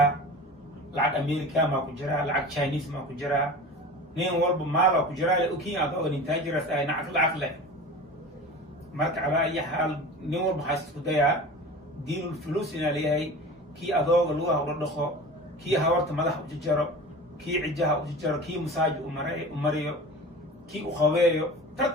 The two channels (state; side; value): normal; both; correlation 0.35